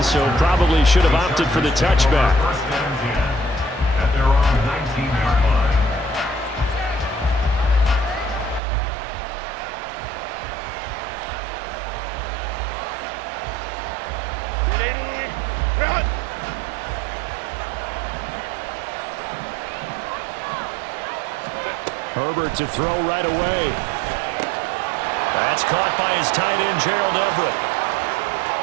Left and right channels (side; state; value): left; drops out; at 8.6 s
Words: so probably should have opted for the touchback. At their own 19-yard line. Herbert to throw right away. That's caught by his tight end, Gerald Everett.